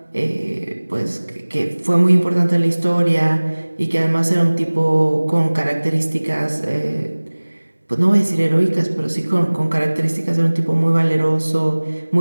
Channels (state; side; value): inverted; both; correlation -1.00